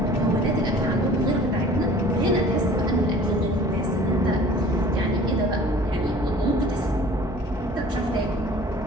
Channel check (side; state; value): both; normal; correlation 0.47